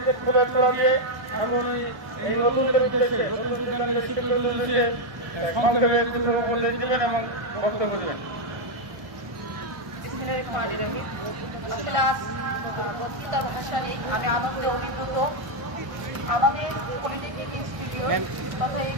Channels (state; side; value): late; left; 1.2 ms